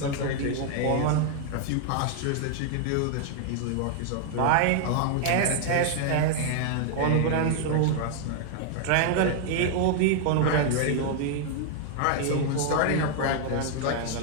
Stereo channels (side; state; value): both; different; correlation -0.01